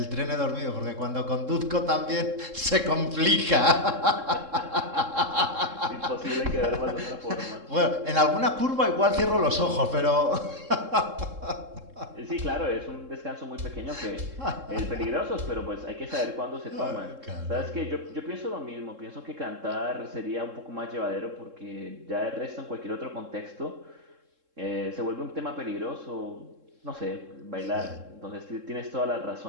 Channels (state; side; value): late; left; 3.7 ms